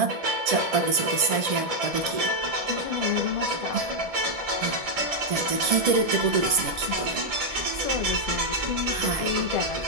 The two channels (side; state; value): left; late; 1.7 ms